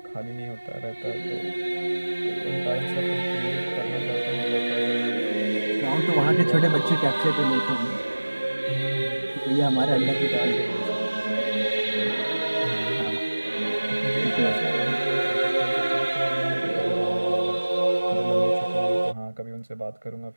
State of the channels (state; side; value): inverted; both; correlation -1.00